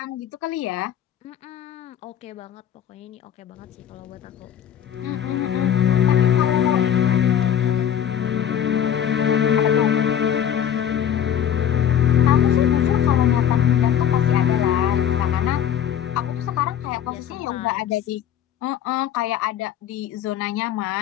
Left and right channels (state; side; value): quieter; right; 9.6 dB